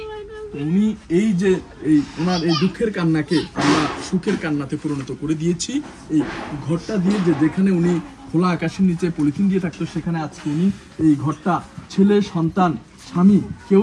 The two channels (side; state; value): both; identical; correlation 1.00